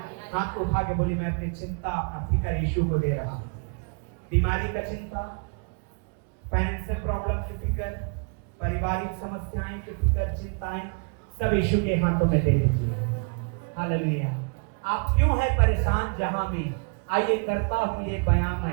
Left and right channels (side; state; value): left; quieter; 36.6 dB